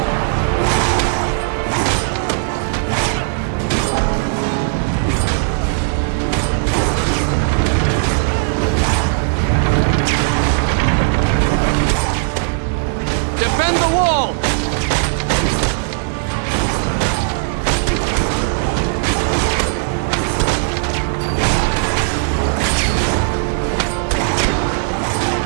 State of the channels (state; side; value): silent; left; digital silence